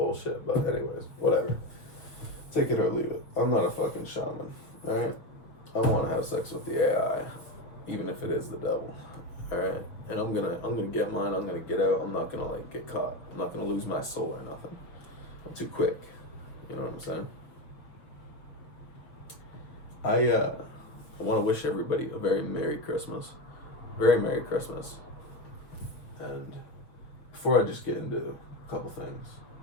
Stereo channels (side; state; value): right; late; 6.2 ms